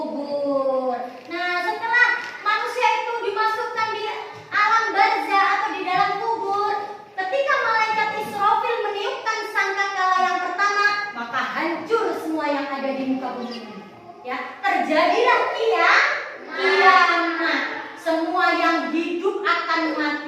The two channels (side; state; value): both; identical; correlation 1.00